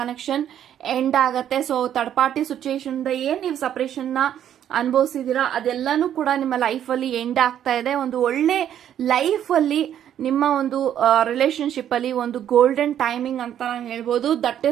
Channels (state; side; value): quieter; left; 10.3 dB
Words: ಎಂಡ್ ಆಗತ್ತೆ. ಸೊ ಥರ್ಡ್ ಪಾರ್ಟಿ ಸಿಚುಯೇಷನ್ ಇಂದ ಏನ್ ನೀವು ಸಪರೇಷನ್ ನ ಅನುಭವಿಸಿದೀರಾ ಅದೆಲ್ಲಾನು ಕೂಡ ನಿಮ್ಮ ಲೈಫ್ ಅಲ್ಲಿ ಎಂಡ್ ಆಗ್ತಾ ಇದೆ. ಒಂದು ಒಳ್ಳೆ ಲೈಫ್ ಅಲ್ಲಿ ನಿಮ್ಮ ಒಂದು ರಿಲೇಶನ್ಶಿಪ್ ಅಲ್ಲಿ ಒಂದು ಗೋಲ್ಡನ್ ಟೈಮಿಂಗ್ ಅಂತ ನಾನು ಹೇಳ್ಬೋದು. ದಟ್